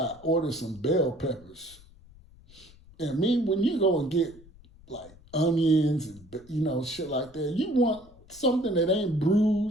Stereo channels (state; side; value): noise; left; rumble, 24 dB below the sound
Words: ordered some bell peppers. And when you go and get like onions and shit like that, you want something that ain't